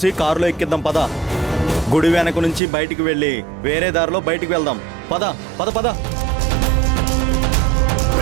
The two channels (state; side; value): drops out; left; at 2.6 s